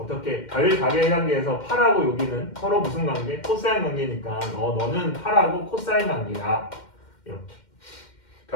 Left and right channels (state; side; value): late; right; 2.1 ms